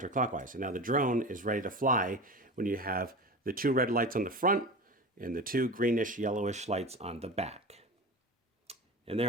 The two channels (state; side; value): normal; both; correlation 0.30